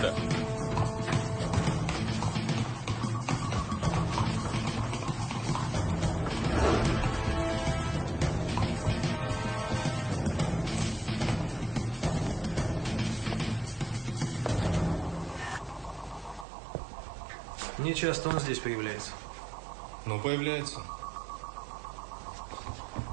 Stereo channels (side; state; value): left; drops out; at 16.4 s